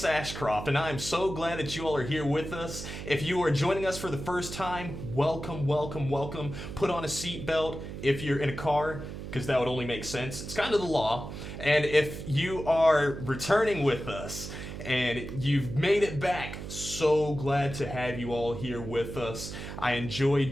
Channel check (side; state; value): right; noise; hum, 9 dB below the sound